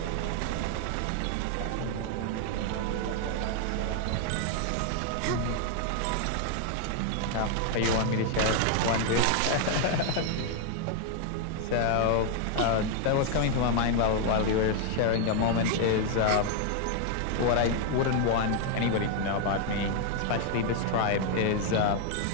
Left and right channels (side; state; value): both; different; correlation 0.00